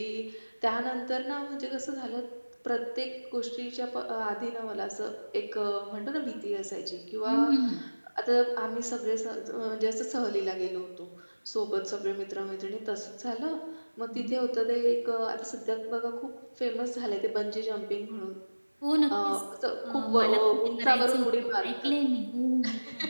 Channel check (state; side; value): inverted; both; correlation -1.00